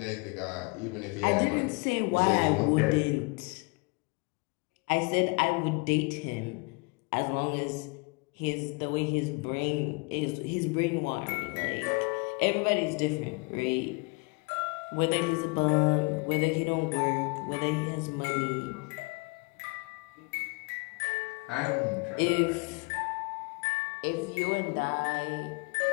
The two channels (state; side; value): quieter; right; 30.4 dB